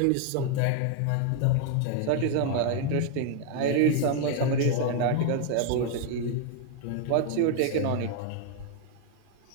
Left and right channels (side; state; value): both; different; correlation 0.00